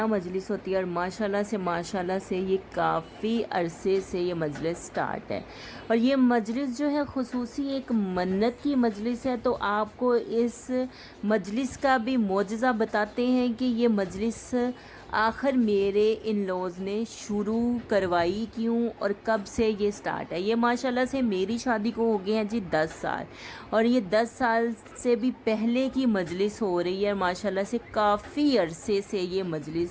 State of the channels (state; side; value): identical; both; correlation 1.00